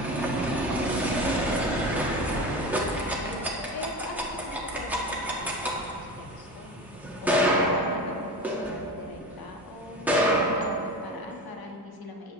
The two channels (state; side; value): normal; both; correlation 0.28